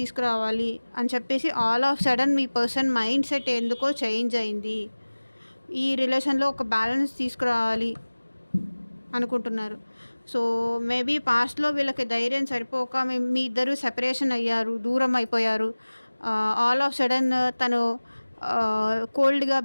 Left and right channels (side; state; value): both; inverted; correlation -1.00